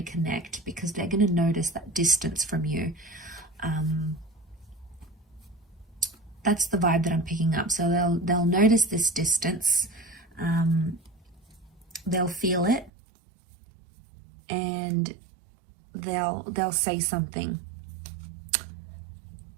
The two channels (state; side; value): drops out; left; at 12.9 s